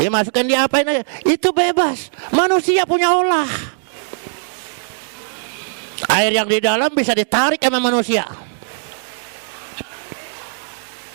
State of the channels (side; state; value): left; silent; digital silence